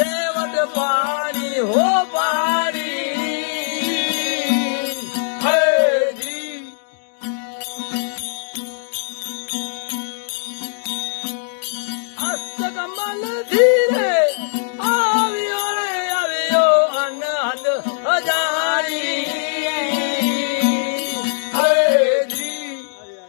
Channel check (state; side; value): silent; right; digital silence